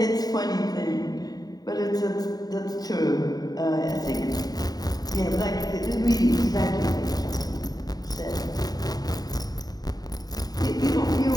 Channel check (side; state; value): right; late; 0.19 ms